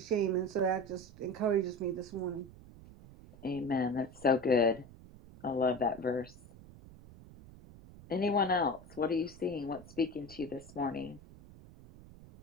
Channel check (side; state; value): right; noise; rumble, 19 dB below the sound